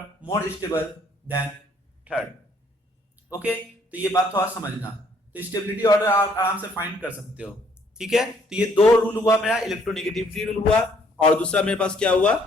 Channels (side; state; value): both; normal; correlation 0.65